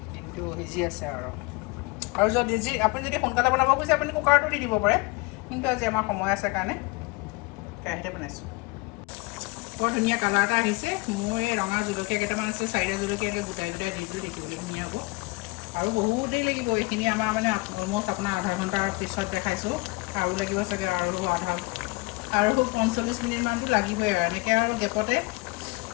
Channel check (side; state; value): right; quieter; 26.2 dB